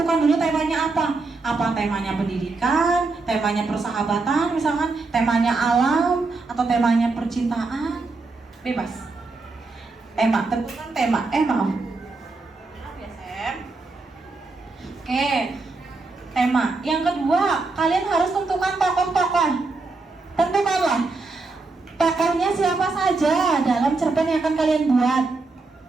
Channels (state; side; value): quieter; left; 3.7 dB